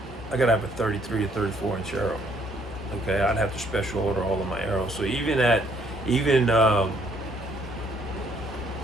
have a 33 or 34 inch arrow. Okay, I'd have to special order all of my arrows. So even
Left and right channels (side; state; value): both; normal; correlation 0.66